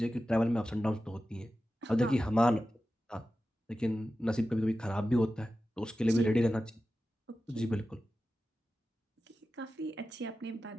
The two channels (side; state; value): both; normal; correlation 0.93